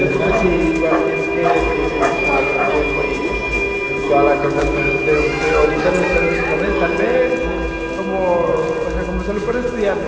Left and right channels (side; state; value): both; identical; correlation 1.00